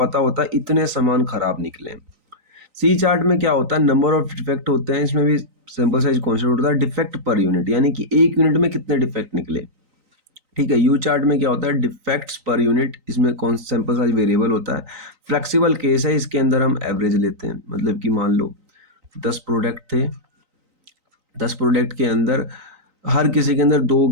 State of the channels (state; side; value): late; left; 3.9 ms